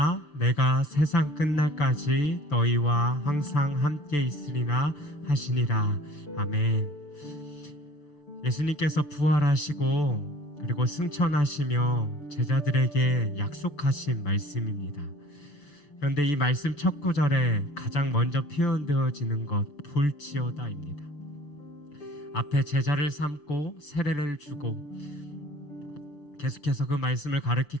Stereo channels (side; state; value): right; late; 6.9 ms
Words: 내가 세상 끝날까지 너희와 항상 함께 있으리라 하시니라. 아멘. 예수님께서 부활하시고 그리고 승천하시며 제자들에게 약속하신 말씀입니다. 그런데 이 말씀 첫 구절에 가장 먼저 표현되어지는 것 볼지어다입니다. 앞에 제자를 삼고 세례를 주고 계속해서 그 말씀을 가르칠